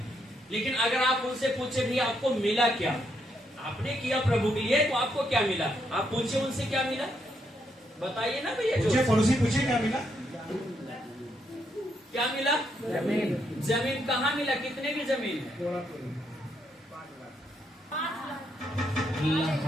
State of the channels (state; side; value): normal; both; correlation 0.77